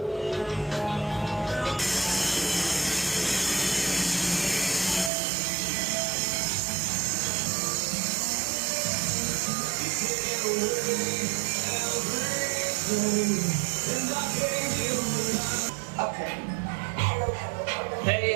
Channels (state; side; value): drops out; left; at 5.1 s